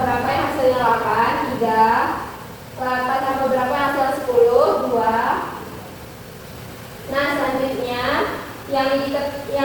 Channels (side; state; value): both; identical; correlation 1.00